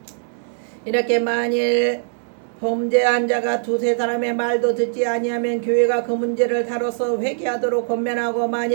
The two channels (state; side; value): silent; left; 57 dB below the other